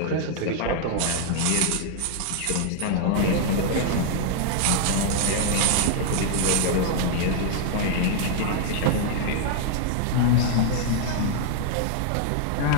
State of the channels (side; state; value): both; different; correlation 0.00